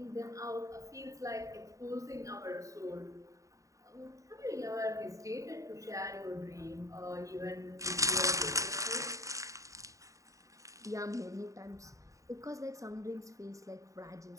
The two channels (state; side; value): late; left; 0.16 ms